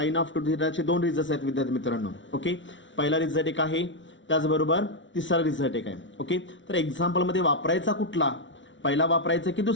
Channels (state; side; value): late; right; 0.55 ms